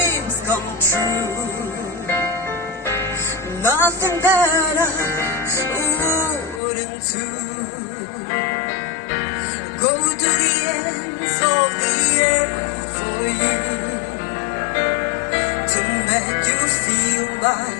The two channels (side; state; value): right; drops out; at 6.6 s